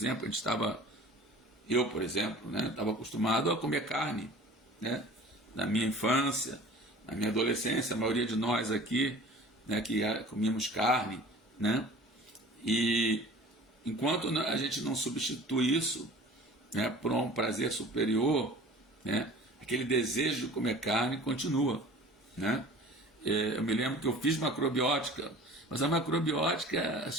eu, por exemplo, né, estava acostumado a comer carne, né, na minha infância, na minha adolescência, a maioria de nós aqui, né, que comíamos carne, né, e enquanto a gente não substitui isso, né, por um prazer superior, né, aquele desejo de comer carne continua, né. Eu me lembro que eu fiz macrobiótica, mas a macrobiótica, as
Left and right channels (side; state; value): both; normal; correlation 0.44